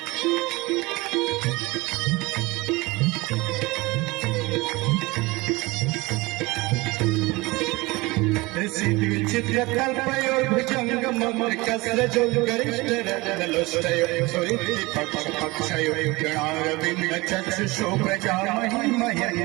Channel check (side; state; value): left; quieter; 22.8 dB